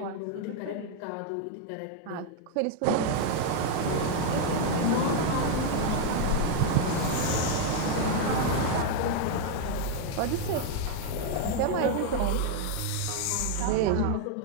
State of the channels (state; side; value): different; both; correlation 0.01